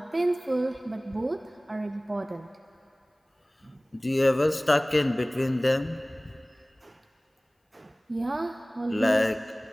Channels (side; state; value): both; normal; correlation 0.98